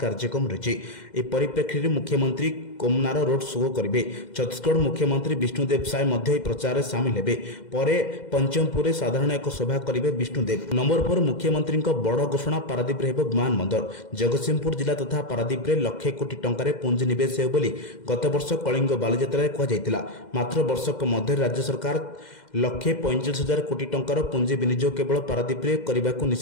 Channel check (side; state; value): right; late; 2.1 ms